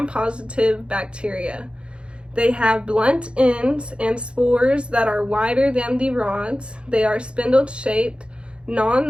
bacteria. They have blunt ends and spores that are wider than the rods. They are spindle-shaped,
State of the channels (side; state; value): left; late; 0.056 ms